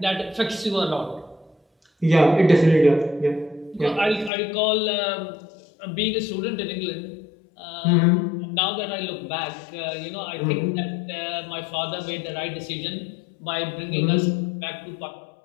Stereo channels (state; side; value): drops out; right; at 4.3 s